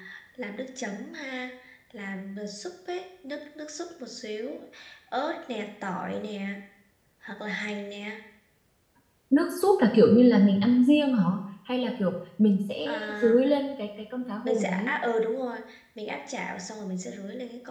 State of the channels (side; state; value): both; identical; correlation 1.00